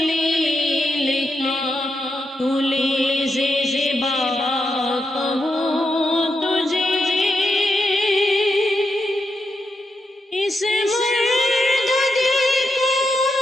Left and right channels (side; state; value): both; normal; correlation 0.84